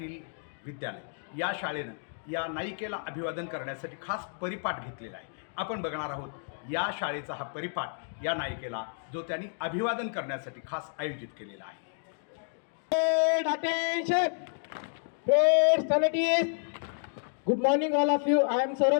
विद्यालय, या शाळेनं या नायिकेला अभिवादन करण्यासाठी खास परिपाठ घेतलेला आहे. आपण बघणार आहोत या शाळेचा हा परिपाठ या नायिकेला, जो त्यांनी अभिवादन करण्यासाठी खास आयोजित केलेला आहे. Attention! Great salutees! Good morning all of you. I am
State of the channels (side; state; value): right; silent; digital silence